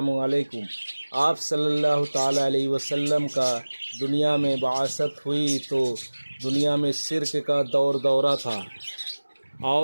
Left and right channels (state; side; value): inverted; both; correlation -1.00